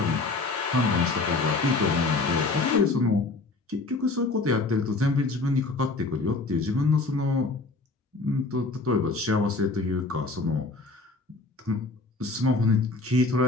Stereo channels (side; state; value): right; quieter; 3.4 dB